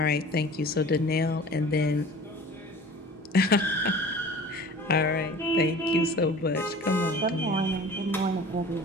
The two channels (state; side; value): normal; both; correlation 0.42